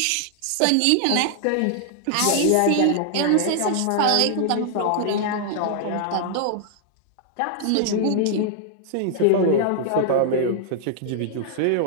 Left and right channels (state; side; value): different; both; correlation -0.01